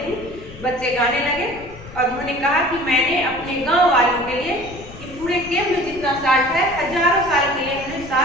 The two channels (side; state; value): left; noise; rumble, 16 dB below the sound